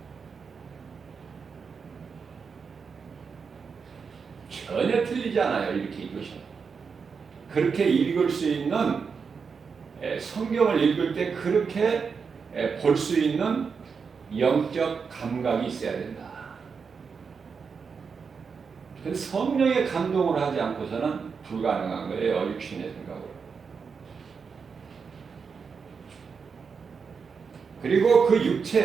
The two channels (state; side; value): quieter; left; 5.7 dB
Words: 전혀 틀리지 않아요. 이렇게 읽으시면. 그렇게 읽을 수 있는, 성경을 읽을 때 그렇게 볼 수 있는 영적 감각이 있어야 된다. 성령의 감동을 하지 않고서는 불가능한 거예요. 육신의 생각으로. 그리고 그